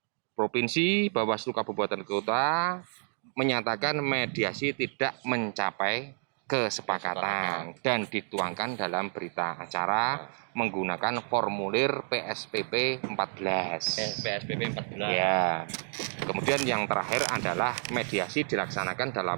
Provinsi, Bawaslu Kabupaten Kota menyatakan mediasi tidak mencapai kesepakatan dan dituangkan dalam berita acara menggunakan formulir PSPP 14. PSPP 14. Ya. Kemudian yang terakhir adalah mediasi dilaksanakan dalam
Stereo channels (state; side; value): silent; left; 58 dB below the other